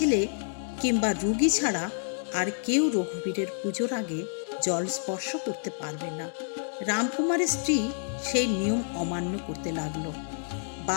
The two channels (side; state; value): right; silent; digital silence